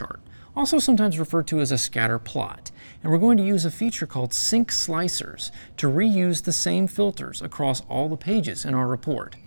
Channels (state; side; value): inverted; both; correlation -1.00